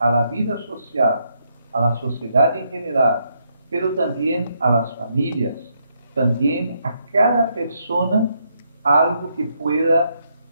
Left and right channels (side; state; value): both; inverted; correlation -0.76